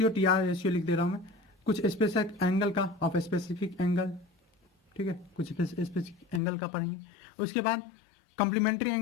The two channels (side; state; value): right; drops out; at 6.4 s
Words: TR रेशियो लिख दे रहा हूँ मैं, कुछ स्पेसिफिक एंगल का, ऑफ स्पेसिफिक एंगल, ठीक है, कुछ स्पेसिफिक एंगल का पढ़ेंगे। उसके बाद कॉम्प्लीमेंट्री